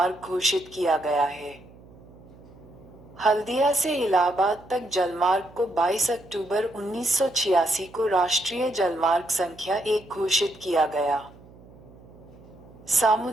घोषित किया गया है। हल्दिया से इलाहाबाद तक जलमार्ग को 22 अक्टूबर 1986 को राष्ट्रीय जलमार्ग संख्या 1 घोषित किया गया।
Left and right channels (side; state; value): right; noise; hum, 22 dB below the sound